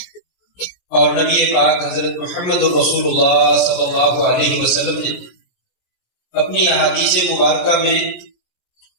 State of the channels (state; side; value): late; right; 16 ms